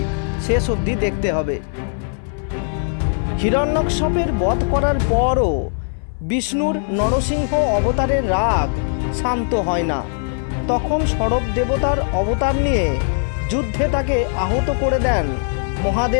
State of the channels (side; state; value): right; silent; 59 dB below the other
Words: শেষ অবধি দেখতে হবে। হিরণ্যকশিপুর বধ করার পরও বিষ্ণুর নরসিংহ অবতারের রাগ শান্ত হয় না। তখন সরব দেবতার অবতার নিয়ে যুদ্ধে তাকে আহত করে দেন